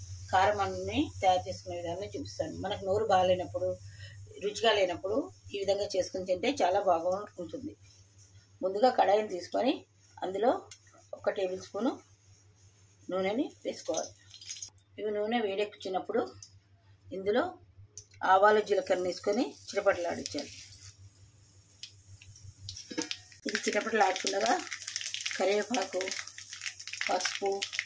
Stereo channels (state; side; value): identical; both; correlation 1.00